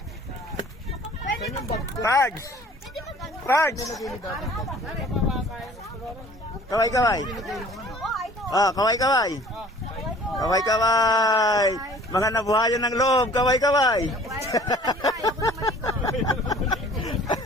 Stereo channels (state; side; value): normal; both; correlation 0.50